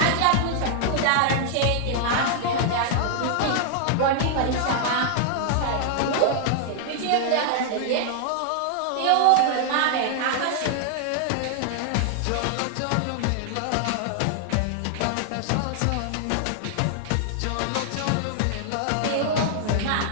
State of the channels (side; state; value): both; different; correlation 0.00